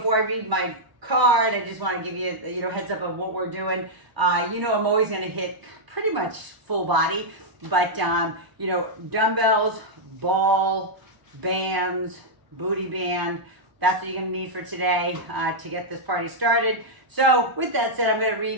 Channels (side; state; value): left; late; 1.0 ms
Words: I read my card, I just want to give you, heads up of what we're doing. I'm always going to hit pretty much full body, but, dumbbells, ball, bands, booty band, that's what you're going to need for today to get this party started. So with that said, I'm going to